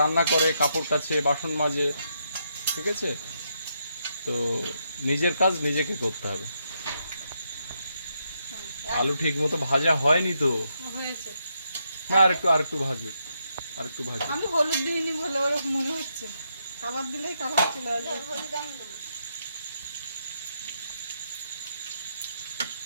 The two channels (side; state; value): both; inverted; correlation -0.80